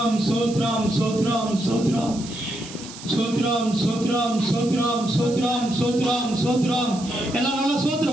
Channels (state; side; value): noise; right; hiss, 15 dB below the sound